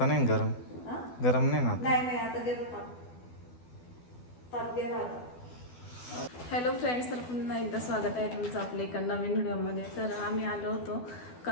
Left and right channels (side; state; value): right; late; 12 ms